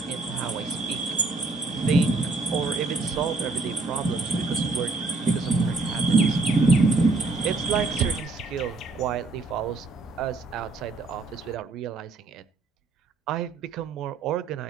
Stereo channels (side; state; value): left; quieter; 3.6 dB